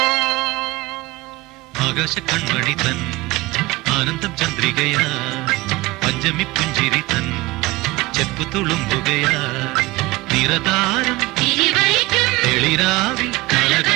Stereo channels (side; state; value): left; quieter; 21.1 dB